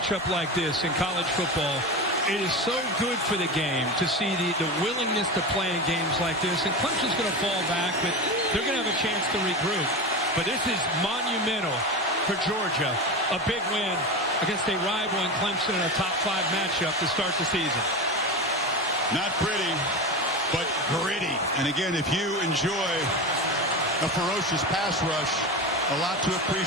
like this in college football, it is so good for the game to see the willingness to play in games like this. And Clemson's going to fall back, but they're going to have a chance to regroup. But this is monumental for Georgia. A big win against a rival in Clemson in a top 5 matchup to start the season. Not pretty, but gritty. And again, if you enjoy a ferocious pass rush, a lot to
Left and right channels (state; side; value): normal; both; correlation 0.23